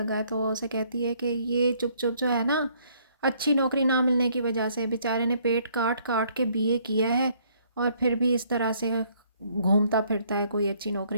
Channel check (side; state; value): both; inverted; correlation -0.65